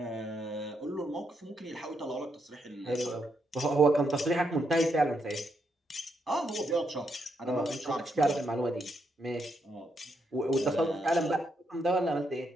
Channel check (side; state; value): both; normal; correlation 0.79